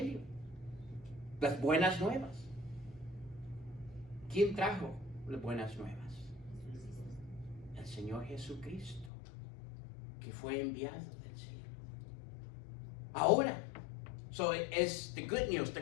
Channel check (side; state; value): right; drops out; at 9.1 s